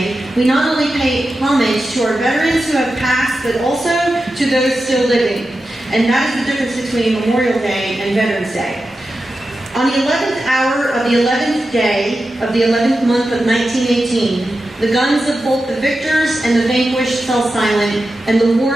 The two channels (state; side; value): normal; both; correlation 0.91